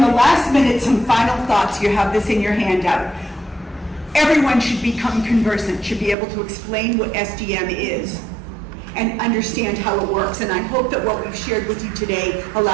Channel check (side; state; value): left; drops out; at 6.2 s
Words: the last minute, some final thoughts. You have this in your handout. Everyone should become conversant, should be able to explain what SDM is and understand how it works. And I hope that what we've shared with you today